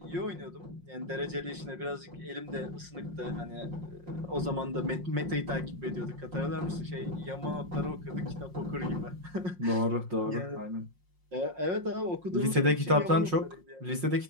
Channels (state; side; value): late; left; 5.6 ms